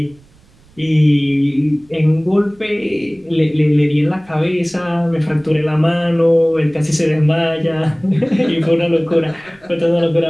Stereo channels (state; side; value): noise; right; rumble, 30 dB below the sound